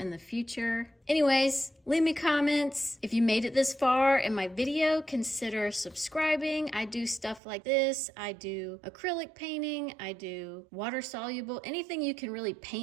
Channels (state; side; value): drops out; left; at 7.4 s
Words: the future. Anyways, leave me comments. If you made it this far in my video, consider subscribing. I do stuff like this. I do acrylic painting. I do water soluble. Anything you can really